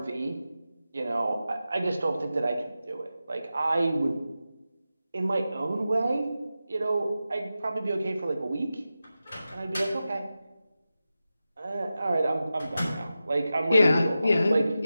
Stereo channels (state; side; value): inverted; both; correlation -0.93